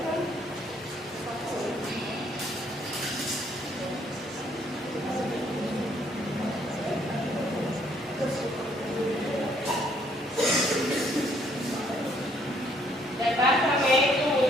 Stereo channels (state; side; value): normal; both; correlation 0.66